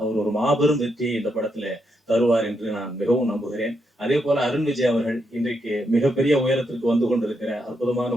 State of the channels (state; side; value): normal; both; correlation 0.80